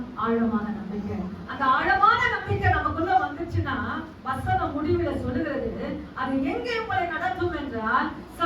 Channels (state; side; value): identical; both; correlation 1.00